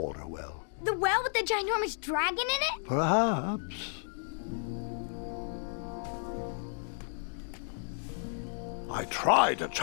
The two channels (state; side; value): silent; right; digital silence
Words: well. The well with the ginormous dragon in it? Perhaps. I tried to